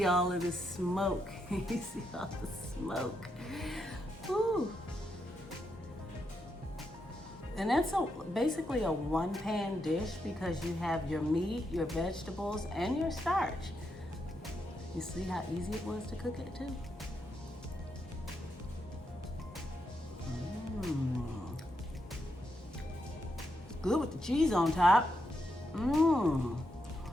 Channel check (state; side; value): normal; both; correlation 0.82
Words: all of the smoke. You see all the smoke. Ooh. And that's basically a one-pan dish because you have your meat, your vegetables, and your starch. You see how easy it was to cook it too? Good with the cheese on top. I'm